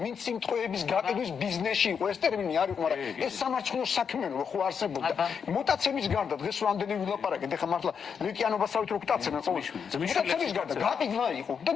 ვინც სიმტყეების გაყიდვის ბიზნესში იყო ეს ტერმინი არ იყო მაგრამ ეს სამარცხნო საქმიანობა ხო არსებობდა მუტაციების გარდა დღეს რამდენი ვილაპარაკეთ ეხლა მართლა ლეკიანობასავით რო გტაცებენ ყოველთვის მუტაციების გარდა გაყიდვა იყო და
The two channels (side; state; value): right; quieter; 6.7 dB